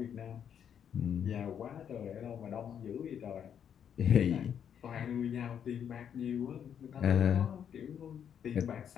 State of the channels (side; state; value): right; quieter; 8.5 dB